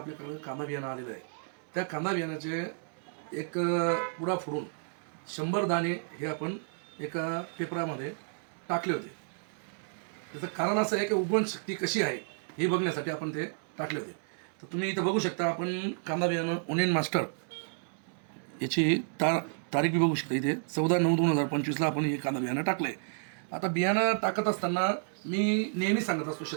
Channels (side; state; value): left; silent; 57 dB below the other